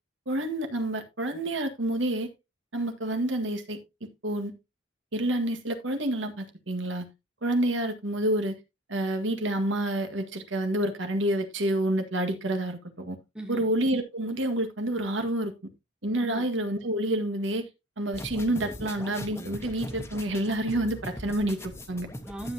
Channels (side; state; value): both; normal; correlation 0.44